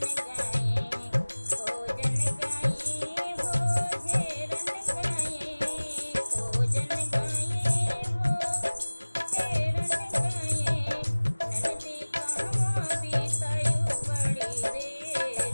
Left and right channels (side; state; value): both; inverted; correlation -1.00